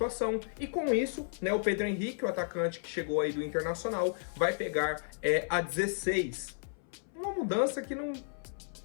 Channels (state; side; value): silent; right; 55 dB below the other